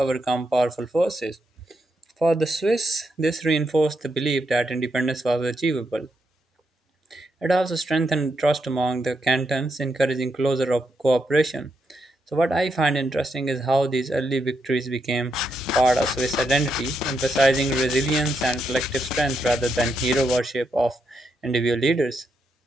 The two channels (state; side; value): normal; both; correlation 0.81